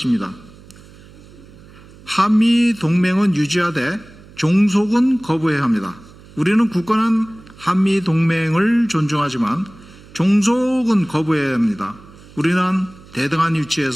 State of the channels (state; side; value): noise; right; hum, 22 dB below the sound